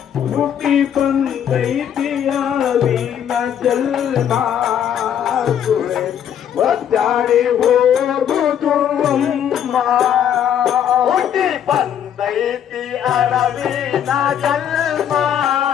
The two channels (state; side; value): quieter; right; 9.4 dB